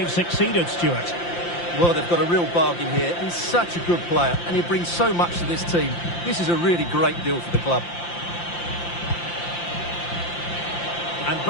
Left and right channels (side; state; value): right; late; 5.8 ms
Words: succeeded, Stuart. Well, they've got a real bargain here. He's such a good player, and he brings so much to this team. This is a really great deal for the club. And